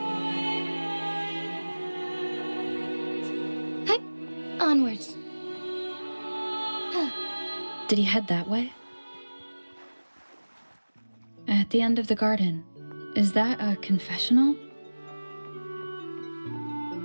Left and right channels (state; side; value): inverted; both; correlation -1.00